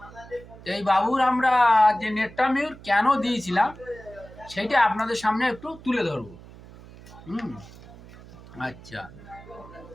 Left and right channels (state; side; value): noise; right; hum, 19 dB below the sound